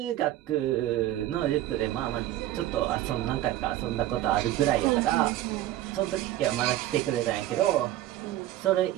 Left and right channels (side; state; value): left; quieter; 14.1 dB